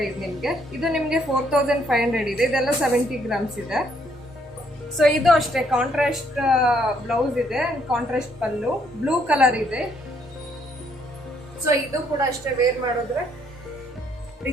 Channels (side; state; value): both; normal; correlation 0.69